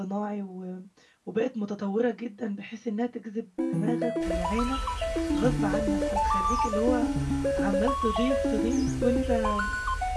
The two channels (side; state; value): both; identical; correlation 1.00